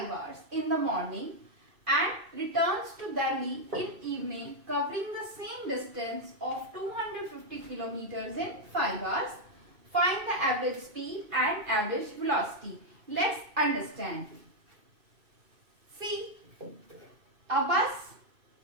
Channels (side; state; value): left; late; 2.6 ms